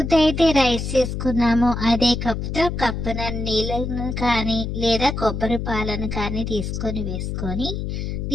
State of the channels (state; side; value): noise; left; hum, 4 dB below the sound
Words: అయితే రైస్ చేసుకున్నాము, అదే కప్పుతో కప్పున నీళ్ళను కానీ లేదా కొబ్బరి పాలను కానీ తీసుకొని వేసుకొని